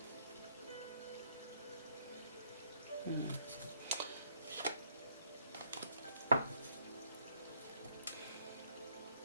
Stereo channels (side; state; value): both; inverted; correlation -0.67